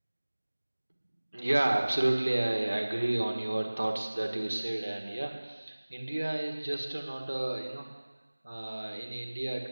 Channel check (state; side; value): inverted; both; correlation -1.00